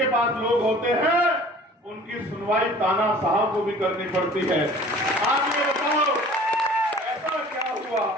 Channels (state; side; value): normal; both; correlation 0.47